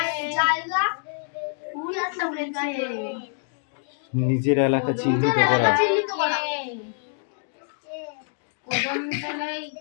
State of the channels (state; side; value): silent; right; digital silence